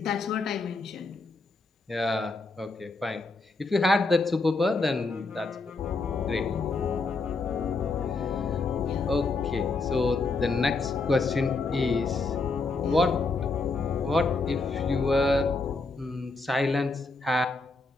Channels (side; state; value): right; quieter; 3.7 dB